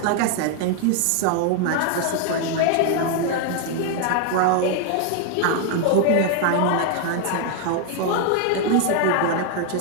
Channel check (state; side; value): different; both; correlation 0.01